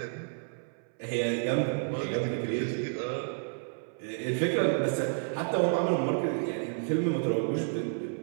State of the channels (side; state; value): left; silent; 57 dB below the other